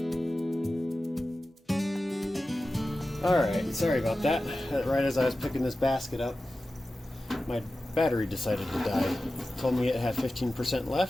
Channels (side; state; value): both; normal; correlation 0.94